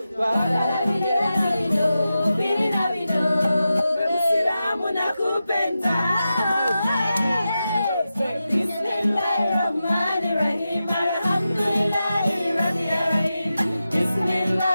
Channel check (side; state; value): both; inverted; correlation -0.91